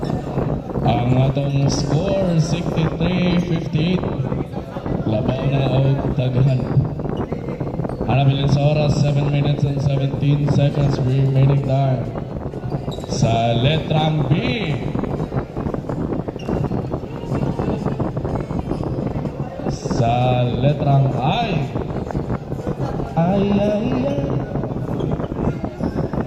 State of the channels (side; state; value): both; identical; correlation 1.00